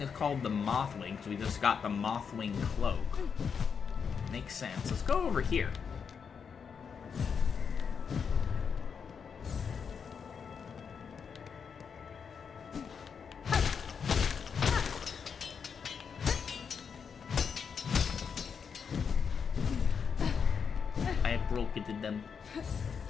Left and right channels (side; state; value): right; quieter; 6.5 dB